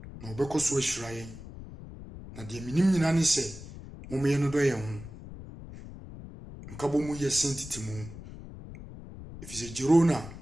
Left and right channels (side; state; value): left; noise; rumble, 13 dB below the sound